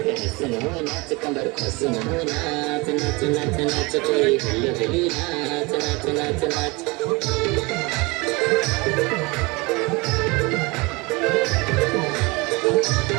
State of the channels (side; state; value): left; quieter; 25.5 dB